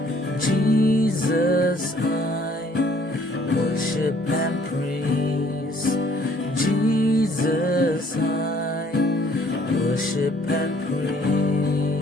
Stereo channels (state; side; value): normal; both; correlation 0.60